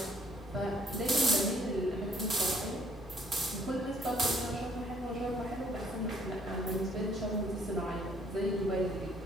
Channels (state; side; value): normal; both; correlation 0.63